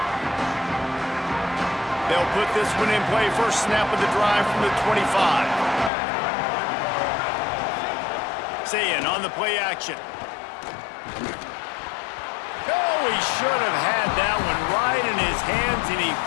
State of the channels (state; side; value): drops out; right; at 5.9 s